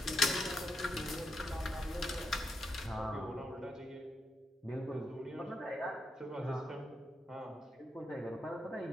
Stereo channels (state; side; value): normal; both; correlation 0.81